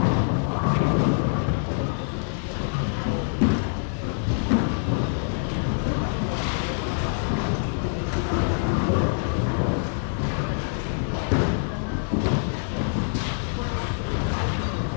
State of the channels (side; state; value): right; silent; digital silence